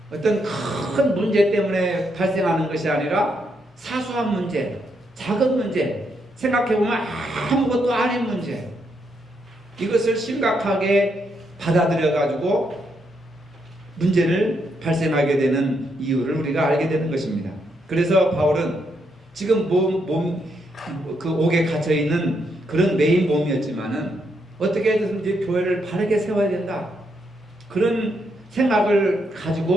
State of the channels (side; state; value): both; normal; correlation 0.78